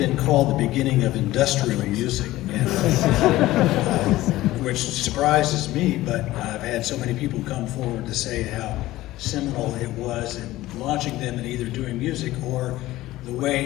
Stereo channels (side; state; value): right; quieter; 16.6 dB